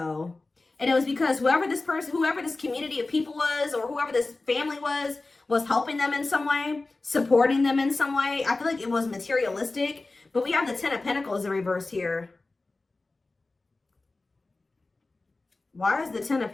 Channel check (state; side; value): quieter; right; 3.3 dB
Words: And it was because whoever this community of people was, or whoever this family was helping them in some way, supporting them in some way. I feel like it was materialistic. But we have the Ten of Pentacles in reverse here. Why is the Ten of